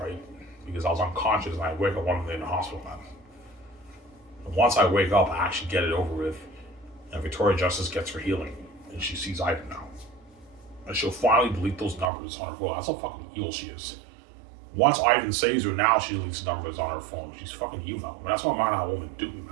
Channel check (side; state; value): left; drops out; at 12.1 s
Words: right? Because I was unconscious and I wake up 1 minute in the hospital, man. And once I wake up, I actually get it over with, and Victoria Justice gets her healing, and she sees Ivan now, and she'll finally delete those numbers on her phone. That's how fucking evil she is. Once Ivan saves her, now she deletes numbers on her phone. She's fucking evil. And that's what man how woman do me,